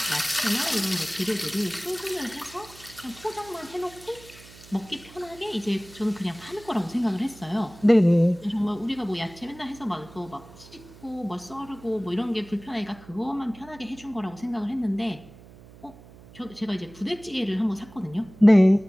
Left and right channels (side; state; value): right; noise; hum, 21 dB below the sound